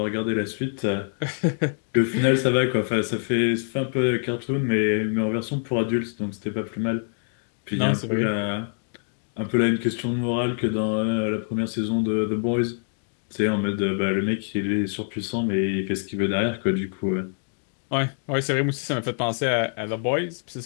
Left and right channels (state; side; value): silent; right; digital silence